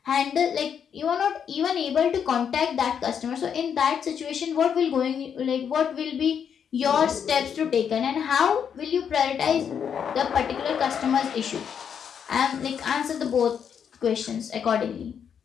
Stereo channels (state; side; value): quieter; right; 7.7 dB